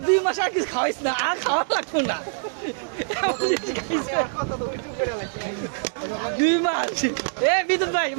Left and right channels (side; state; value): left; silent; digital silence